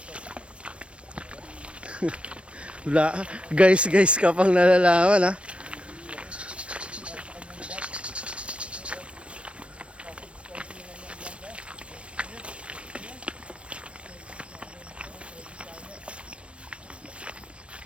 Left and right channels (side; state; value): left; late; 0.060 ms